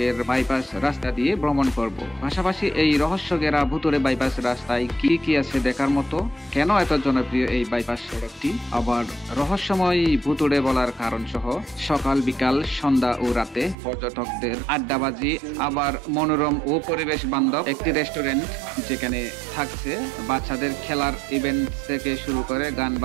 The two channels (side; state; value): left; drops out; at 13.8 s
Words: বাইপাস রাস্তা দিয়ে ভ্রমণ করব। পাশাপাশি এই রহস্য ঘেরা ভুতুড়ে বাইপাস রাস্তায় কি কি আছে দেখার মতো, কেন এত জনপ্রিয় এই বাইপাস সড়কটি, আবার রহস্যময় ভুতুড়ে বলার কারণ সহ সকাল বিকাল সন্ধ্যা ও রাতে পর্যটকদের আড্ডাবাজি, আবার মনোরম ও পরিবেশ বান্ধব একটি রেস্টুরেন্ট যেখানে থাকছে বাচ্চাদের খেলার ইভেন্ট থেকে শুরু করে গান